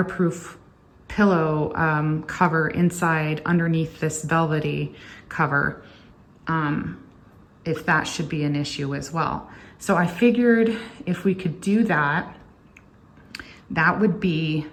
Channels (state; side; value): identical; both; correlation 1.00